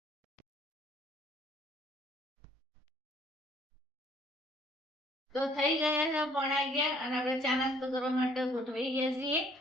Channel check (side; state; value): both; normal; correlation 0.60